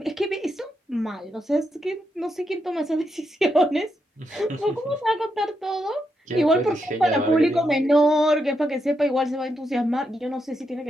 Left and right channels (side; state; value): both; normal; correlation 0.82